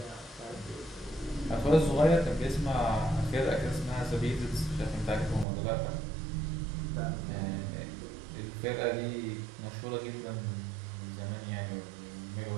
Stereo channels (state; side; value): drops out; left; at 5.5 s